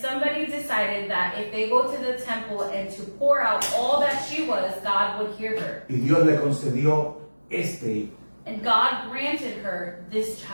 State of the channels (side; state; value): both; inverted; correlation -1.00